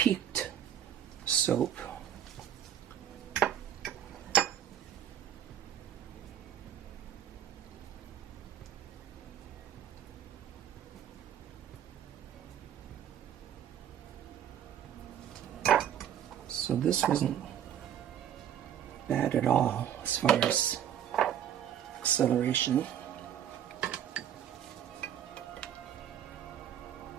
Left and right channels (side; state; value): left; quieter; 10.1 dB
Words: soap. So this wasn't bad at all as far as acceleration.